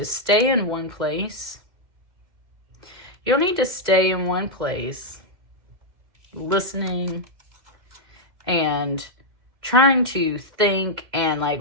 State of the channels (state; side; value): late; left; 2.1 ms